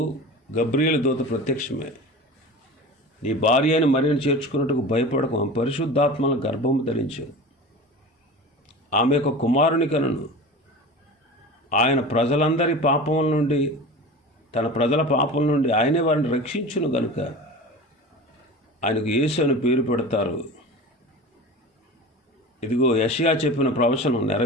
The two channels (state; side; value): normal; both; correlation 0.34